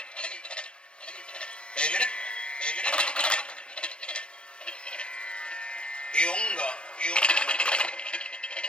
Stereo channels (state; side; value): late; right; 0.055 ms